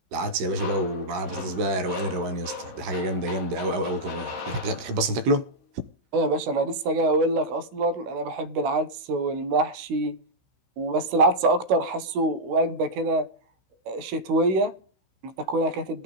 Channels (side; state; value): left; late; 16 ms